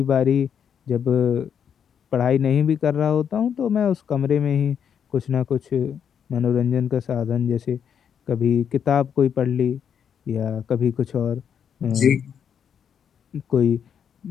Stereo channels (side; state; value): right; quieter; 8.0 dB